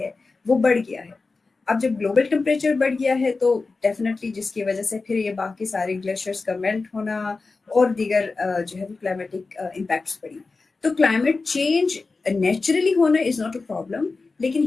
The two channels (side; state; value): right; quieter; 4.0 dB